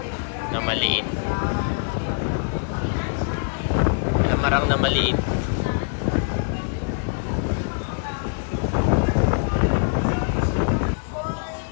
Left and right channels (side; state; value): right; silent; 62 dB below the other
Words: Na maliit. Lamarang na maliit.